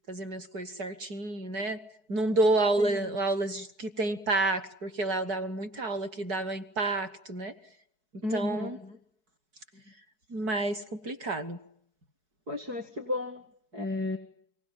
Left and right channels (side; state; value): left; late; 4.6 ms